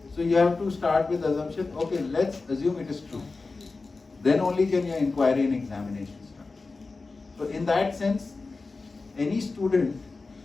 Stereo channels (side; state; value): right; quieter; 3.8 dB